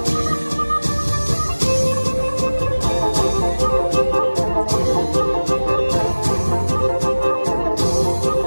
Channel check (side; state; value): both; inverted; correlation -1.00